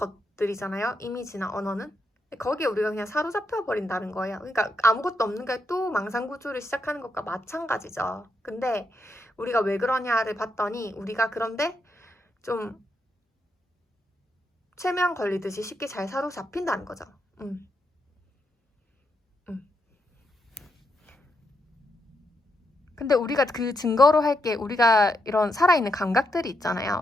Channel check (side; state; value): both; normal; correlation 0.81